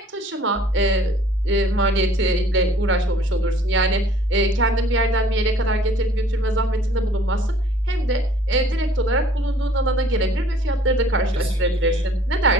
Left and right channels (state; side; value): normal; both; correlation 0.55